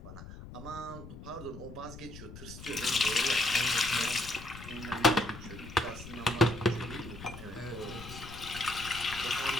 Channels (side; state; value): left; noise; rumble, 13 dB below the sound